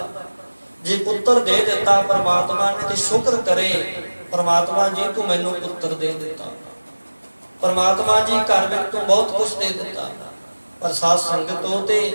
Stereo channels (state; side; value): inverted; both; correlation -1.00